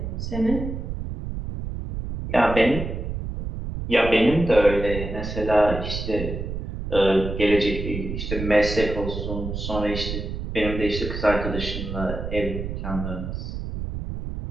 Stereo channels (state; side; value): noise; right; rumble, 5 dB below the sound